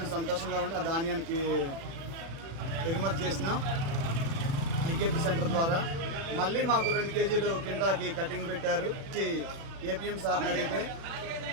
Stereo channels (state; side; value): late; left; 36 ms